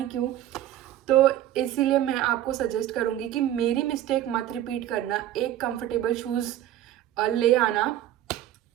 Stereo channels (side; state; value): left; quieter; 12.6 dB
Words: क्यों. तो इसीलिए मैं आपको सजेस्ट करूँगी कि मेरी मिस्टेक मत रिपीट करना. एक कंफर्टेबल शूज़ ले आना.